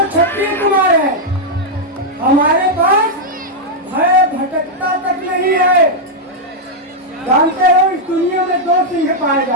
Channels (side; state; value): both; normal; correlation -0.03